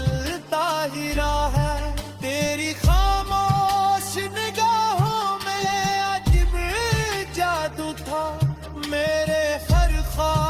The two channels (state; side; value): identical; both; correlation 1.00